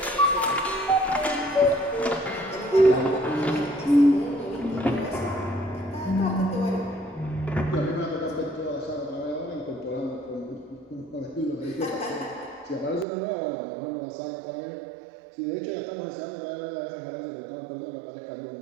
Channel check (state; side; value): drops out; left; at 13.1 s